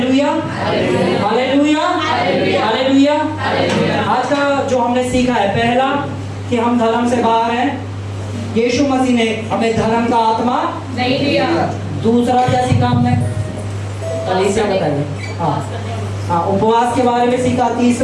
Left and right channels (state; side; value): identical; both; correlation 1.00